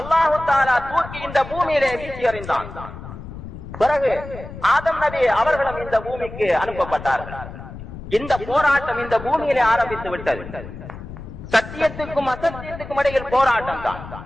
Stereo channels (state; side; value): noise; left; rumble, 12 dB below the sound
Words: தஆலா தூக்கி இந்த பூமியிலே வீசி எறிந்தான். பிறகு ஆதம் நபி அவர்களும் இந்த பூமிக்கு அனுப்பப்பட்டார்கள். இந்த போராட்டம் இந்த பூமியிலே ஆரம்பித்து விட்டது. சத்தியத்துக்கும் அசத்தியத்துக்கும் இடையில் போராட்டம் தான்.